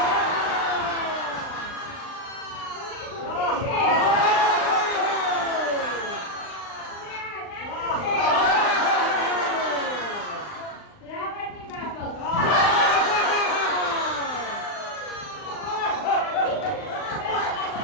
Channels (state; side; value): late; right; 39 ms